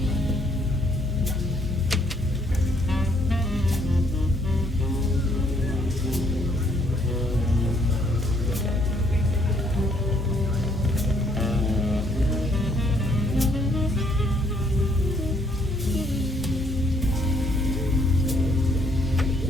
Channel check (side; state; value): both; normal; correlation 0.68